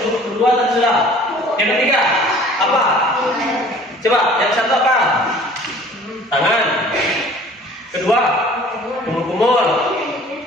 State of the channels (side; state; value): both; normal; correlation 0.50